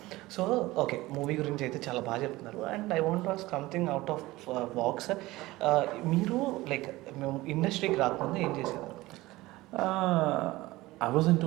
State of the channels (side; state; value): left; quieter; 19.0 dB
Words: సో ఓకే, మూవీ గురించి అయితే చాలా బాగా చెప్తున్నారు. And I want ask something out of box. మీరు లైక్ మేము ఇండస్ట్రీకి రాకముందు ఏం చేసేవారు? ఐ వాజ్